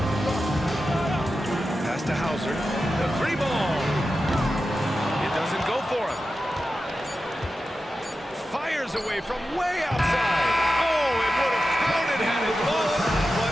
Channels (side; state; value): both; normal; correlation 0.92